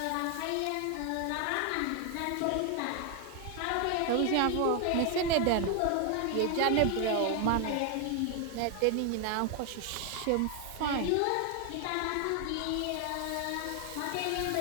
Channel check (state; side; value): different; both; correlation 0.00